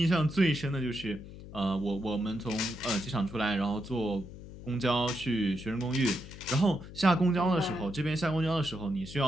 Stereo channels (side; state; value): left; noise; hum, 14 dB below the sound